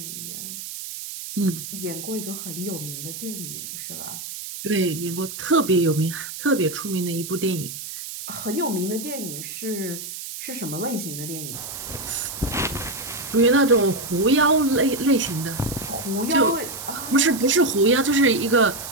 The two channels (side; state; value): right; noise; hiss, 9 dB below the sound